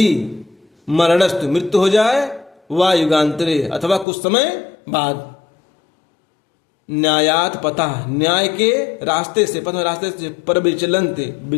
मरणस्तु मृत्यु हो जाए, वा युगांतरे अथवा कुछ समय बाद। न्यायात पता, न्याय के रास्ते से, पथ रास्ते से, पर विचलंत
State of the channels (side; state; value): right; drops out; at 4.0 s